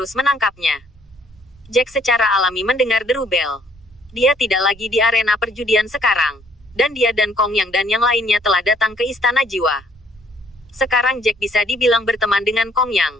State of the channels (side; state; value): right; noise; rumble, 27 dB below the sound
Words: menangkapnya. Jack secara alami mendengar deru bel. Dia tidak lagi di arena perjudian sekarang. Dan dia dan Kong Yang dan yang lainnya telah datang ke Istana Jiwa. Sekarang Jack bisa dibilang berteman dengan Kong